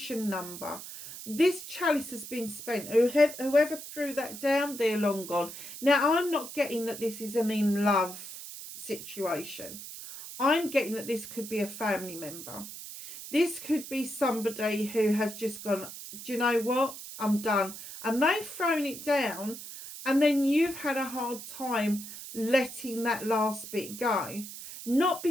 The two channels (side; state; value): right; noise; hiss, 11 dB below the sound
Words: number. This chalice has been spent. Whoever threw that down, they're long gone. Now, I'm not getting that this is an in love situation. I'm getting that this could be a family member. This could be somebody who has just gone, do you know what? I'm done. And they've thrown it down, and then you've had a hard time letting that last bit go. Not